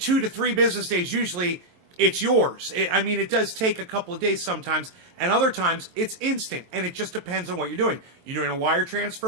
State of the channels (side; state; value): left; late; 23 ms